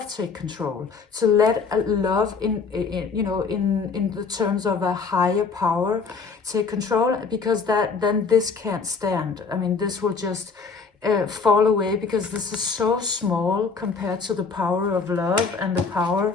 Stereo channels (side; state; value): right; quieter; 5.0 dB